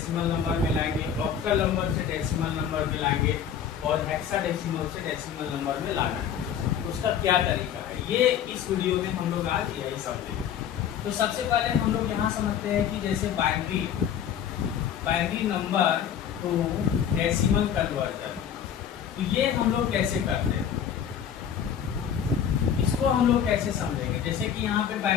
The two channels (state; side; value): quieter; right; 8.7 dB